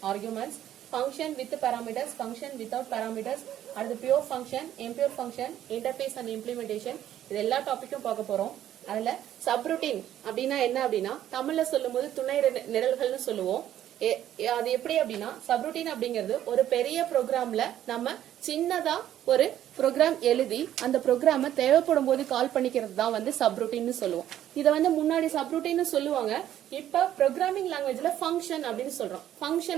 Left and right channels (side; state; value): left; quieter; 11.6 dB